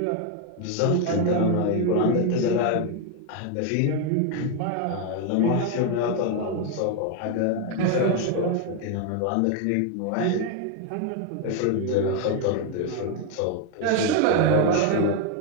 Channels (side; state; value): both; different; correlation 0.01